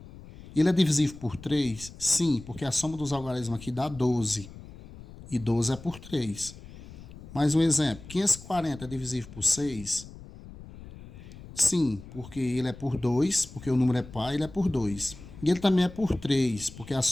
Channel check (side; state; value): left; noise; rumble, 16 dB below the sound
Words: Ele é divisível por 3? Sim, porque a soma dos algarismos aqui dá 12. E 12 é por 3. Mais um exemplo. 540 é divisível por 6? Sim, porque ele é por 2, porque o número é par, ele é por 2. E ele também é por 3, porque a